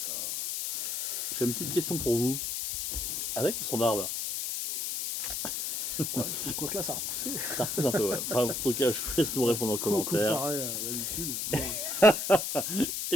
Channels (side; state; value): left; noise; hiss, 2 dB below the sound